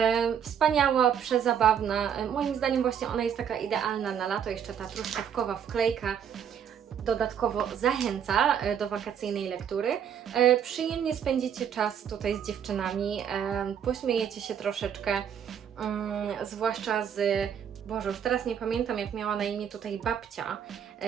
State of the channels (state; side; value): quieter; left; 8.4 dB